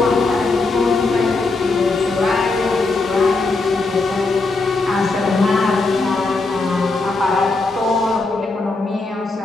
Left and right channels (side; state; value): right; quieter; 3.6 dB